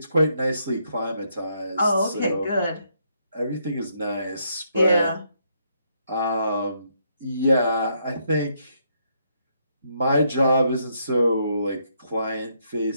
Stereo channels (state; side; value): inverted; both; correlation -0.75